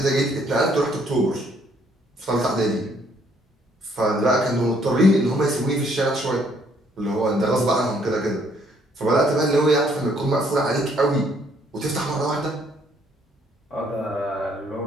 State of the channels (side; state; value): both; normal; correlation 0.66